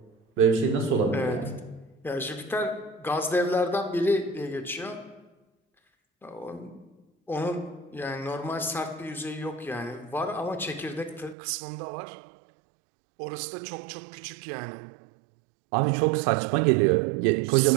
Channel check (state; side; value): drops out; left; at 11.4 s